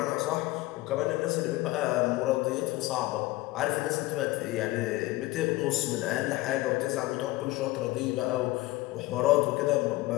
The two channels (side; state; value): right; quieter; 19.1 dB